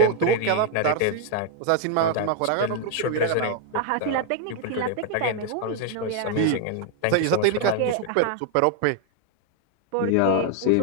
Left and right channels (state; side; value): different; both; correlation 0.00